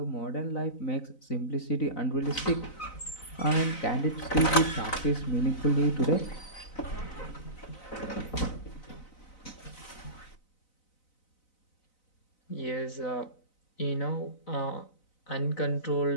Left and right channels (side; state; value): right; late; 4.0 ms